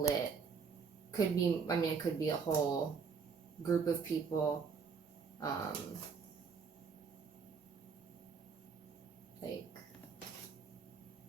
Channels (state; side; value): quieter; left; 5.7 dB